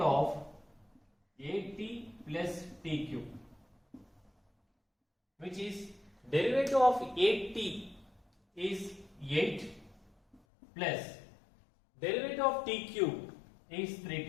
at plus t cube, which is derivative of 8t is 8 plus derivative of t cube is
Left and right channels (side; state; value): right; drops out; at 10.4 s